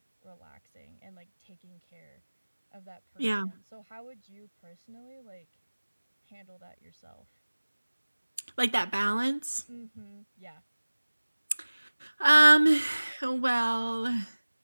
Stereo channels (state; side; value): inverted; both; correlation -1.00